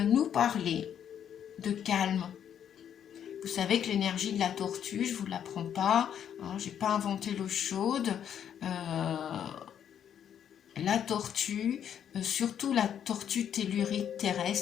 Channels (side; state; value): right; quieter; 9.1 dB